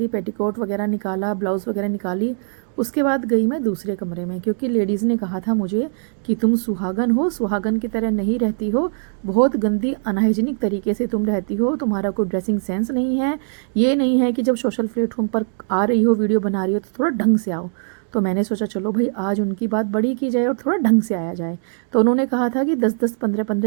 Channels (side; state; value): left; silent; 65 dB below the other